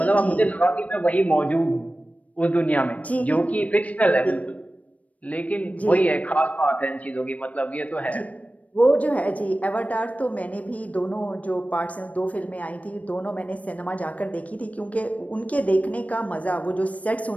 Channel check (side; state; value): right; late; 0.068 ms